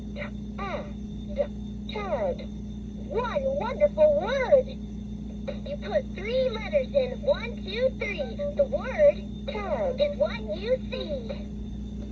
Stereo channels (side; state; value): both; identical; correlation 1.00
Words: Tad. One wonderful word! You put 3 letters in 1, 2, 3. The word tad is what you see.